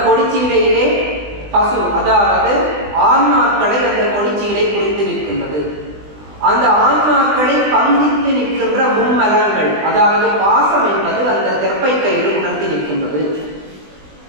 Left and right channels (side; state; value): left; late; 20 ms